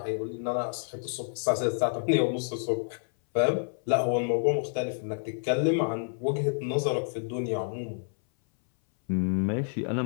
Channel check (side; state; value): right; silent; 59 dB below the other